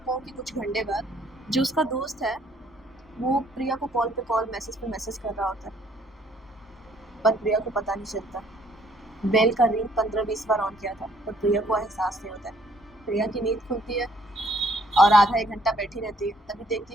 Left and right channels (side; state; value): both; normal; correlation 0.64